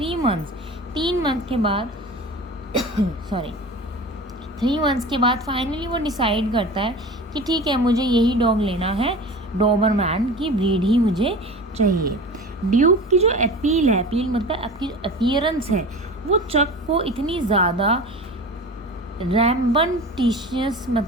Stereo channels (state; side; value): normal; both; correlation 0.35